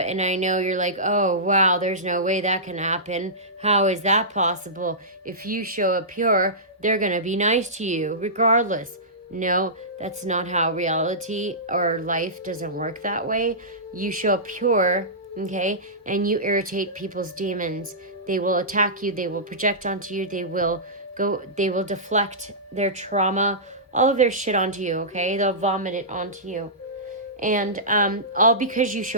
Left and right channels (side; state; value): both; normal; correlation -0.19